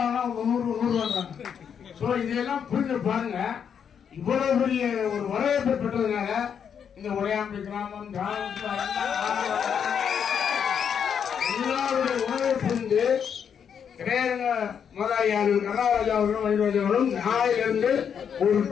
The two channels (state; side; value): quieter; right; 7.6 dB